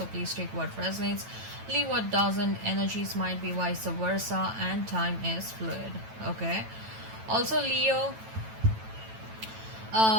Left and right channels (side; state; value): left; late; 9.1 ms